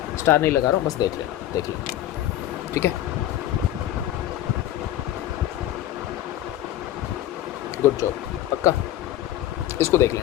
स्टार नहीं लगा रहा हूँ, बस देख लेना, देख लेना, ठीक है। गुड जॉब, पक्का, इसको देख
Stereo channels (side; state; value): right; quieter; 13.0 dB